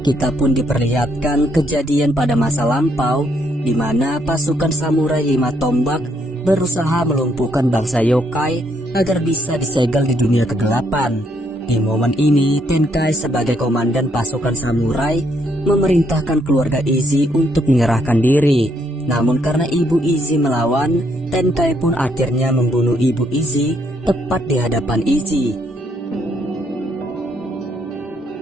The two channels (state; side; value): normal; both; correlation 0.73